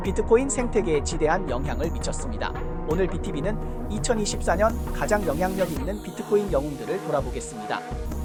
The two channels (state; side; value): identical; both; correlation 1.00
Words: 비트코인 생태계에 지대한 영향을 미쳤습니다. 오늘 BTV는 2024년 가장 영향력 있는 비트코인 영웅들을 돌아보겠습니다.